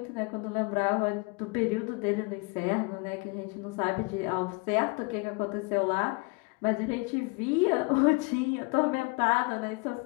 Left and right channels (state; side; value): quieter; right; 28.6 dB